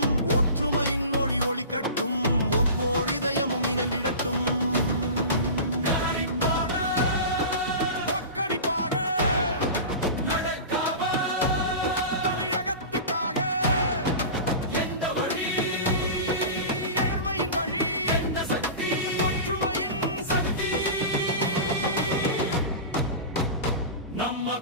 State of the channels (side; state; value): both; inverted; correlation -0.31